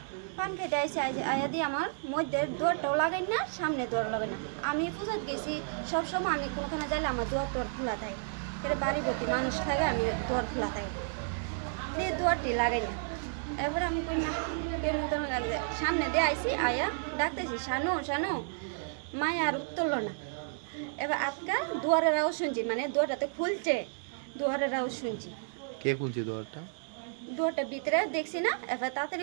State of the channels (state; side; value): silent; left; digital silence